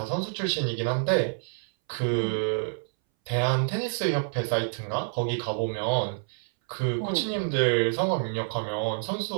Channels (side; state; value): left; silent; 60 dB below the other